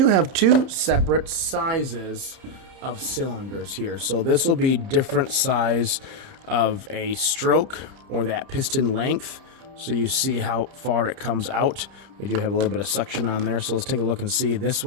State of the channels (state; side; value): late; left; 30 ms